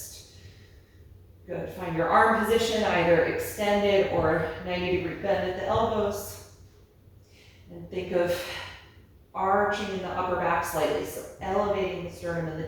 Good. Find your arm position, either extended or 90-degree bend at the elbows. And think of arching in the upper back slightly, so elevating the sternum and the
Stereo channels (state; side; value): identical; both; correlation 1.00